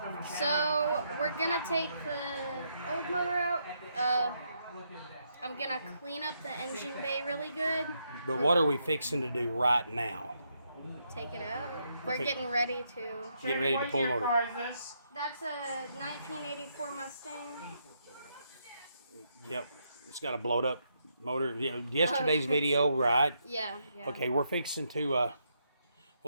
So we're gonna take the old motor out. I'm gonna clean up the engine bay really good. But what are we fixing to do right now? Take it out. We're getting ready to. Getting ready to pull the motor. That's a 1984 Mustang. Yep, it's got a blowed up motor. Yesterday's video, right? Yeah. Okay, we're fixing to.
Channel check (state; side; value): inverted; both; correlation -0.78